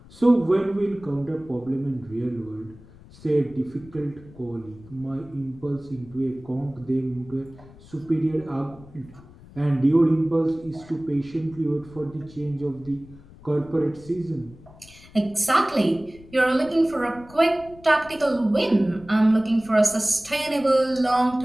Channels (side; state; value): left; noise; rumble, 22 dB below the sound